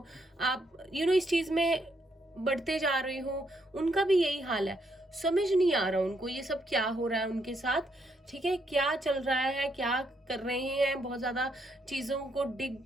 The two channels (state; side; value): normal; both; correlation 0.75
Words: आप इस चीज में बढ़ते जा रहे हो, उनका भी यही हाल है, समझ नहीं आ रहा उनको ये सब क्या हो रहा है उनके साथ, ठीक है, क्या चल रहा है, क्या कर रहे हैं, बहुत ज्यादा चीजों को